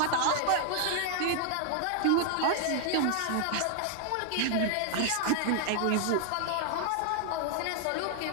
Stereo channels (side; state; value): both; different; correlation 0.00